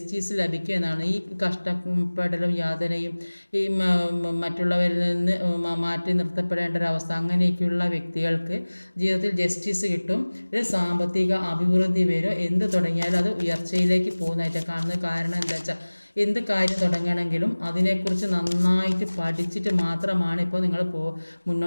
ലഭിക്കും എന്നാണ്. ഈ കഷ്ടപ്പെടലും യാതനയും ഈ മറ്റുള്ളവരിൽ നിന്ന് മാറ്റി നിർത്തപ്പെടേണ്ട ഒരവസ്ഥ, അങ്ങനെയൊക്കെയുള്ള വ്യക്തികൾക്ക് ജീവിതത്തിൽ ജസ്റ്റിസ് കിട്ടും. ഒരു സാമ്പത്തിക അഭിവൃദ്ധി വരും. എന്ത് തുടങ്ങിയാലും അത് ഉയർച്ചയിലേക്ക് പോകുന്നതായിട്ട് കാണുന്നത്. കാരണം എന്താ വെച്ചാൽ എന്ത് കാര്യം തുടങ്ങണമെങ്കിലും അതിനെക്കുറിച്ച് നന്നായിട്ട് പഠിച്ചിട്ട് മാത്രമാണ് ഇപ്പോൾ നിങ്ങൾ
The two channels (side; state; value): both; inverted; correlation -1.00